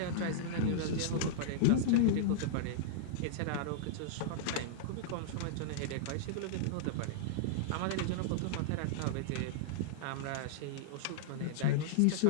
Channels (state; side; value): different; both; correlation -0.02